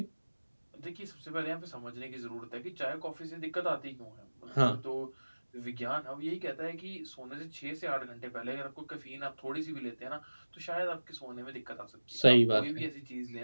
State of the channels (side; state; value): both; inverted; correlation -1.00